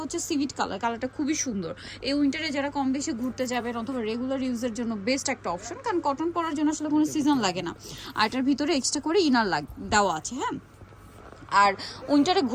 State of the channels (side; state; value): both; identical; correlation 1.00